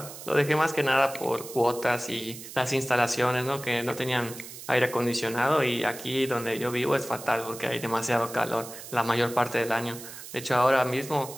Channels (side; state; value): right; noise; hiss, 13 dB below the sound